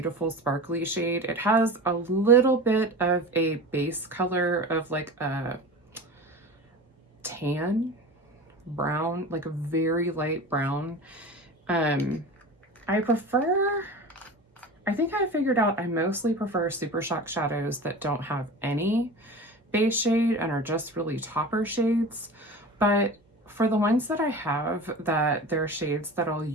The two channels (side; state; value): both; normal; correlation 0.33